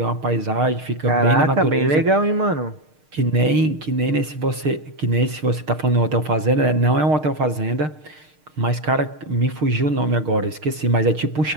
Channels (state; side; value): late; left; 6.5 ms